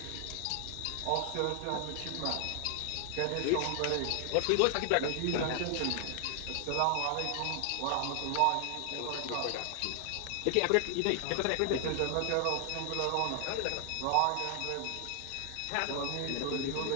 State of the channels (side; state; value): both; different; correlation 0.00